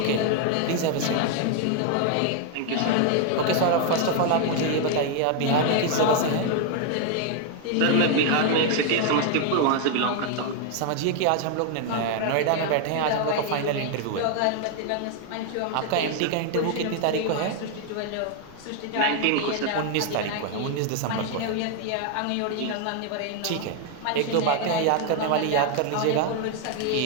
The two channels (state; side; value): different; both; correlation 0.01